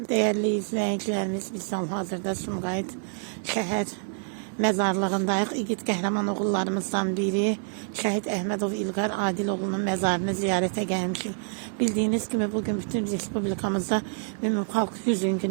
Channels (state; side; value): silent; left; 56 dB below the other